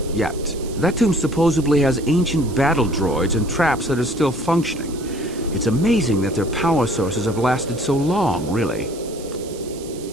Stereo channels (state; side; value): noise; right; hiss, 18 dB below the sound